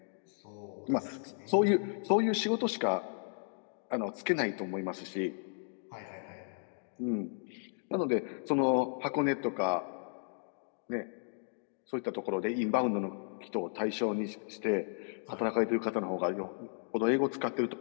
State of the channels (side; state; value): right; silent; 55 dB below the other